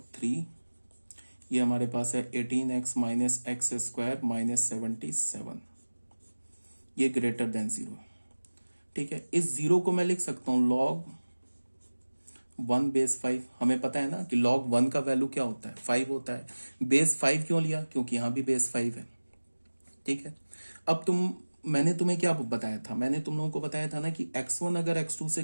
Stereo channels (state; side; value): inverted; both; correlation -1.00